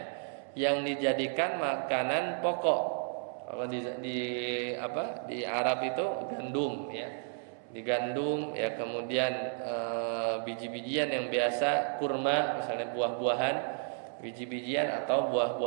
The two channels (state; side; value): silent; left; 56 dB below the other